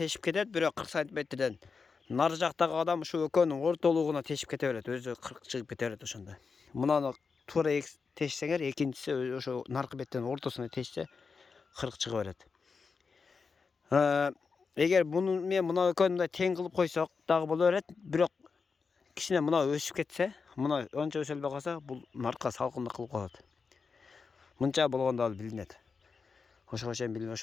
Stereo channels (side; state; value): right; quieter; 5.1 dB